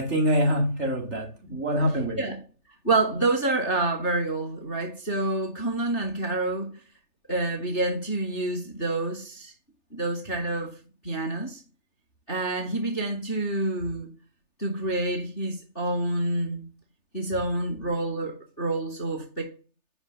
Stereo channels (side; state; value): right; late; 3.3 ms